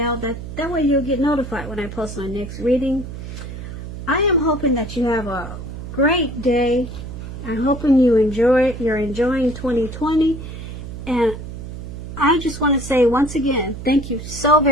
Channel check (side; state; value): right; noise; hum, 9 dB below the sound